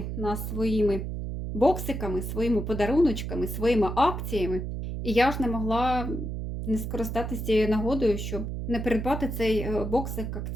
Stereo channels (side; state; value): right; noise; hum, 4 dB below the sound